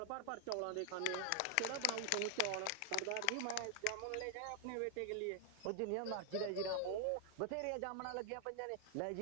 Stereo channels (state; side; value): different; both; correlation 0.00